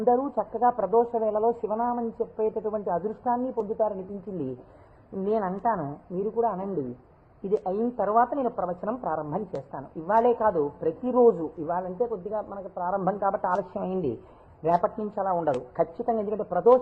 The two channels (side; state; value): both; identical; correlation 1.00